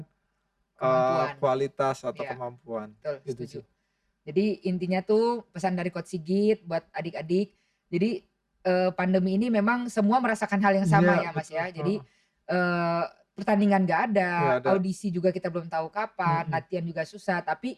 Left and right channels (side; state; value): both; identical; correlation 1.00